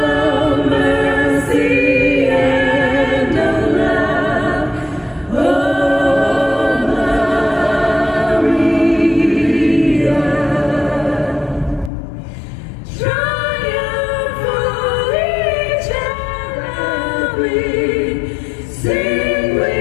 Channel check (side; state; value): right; drops out; at 11.9 s